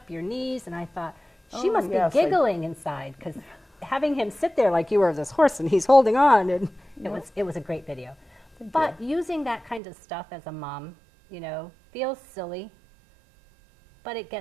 your knees, and I thought, she Oh, must yes, be I- giggling inside, because having him sit there like you were this horse and he's holding on, and it was a great video. But using that kind of stuff as a mom, you know, feels silly, but it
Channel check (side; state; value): left; drops out; at 9.8 s